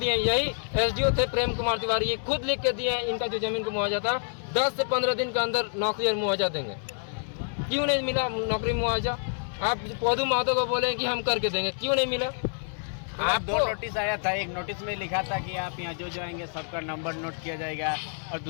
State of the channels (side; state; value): right; silent; digital silence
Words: यही एसडीओ थे प्रेम कुमार तिवारी, ये खुद लिख के दिए इनका जो जमीन का मुआवजा था 10 से 15 दिन के अंदर नौकरी और मुआवजा देंगे। क्यों नहीं मिला नौकरी मुआवजा? आप पौधु महतो को बोले कि हम करके देंगे, क्यों नहीं मिला? आपको 2 नोटिस आया था। एक नोटिस में लिखा था कि आप यहाँ जो आएंगे सबका नंबर नोट किया जाएगा, और